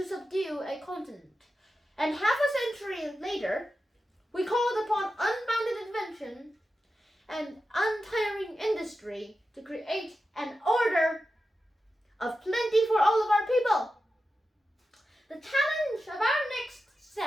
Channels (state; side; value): normal; both; correlation 0.91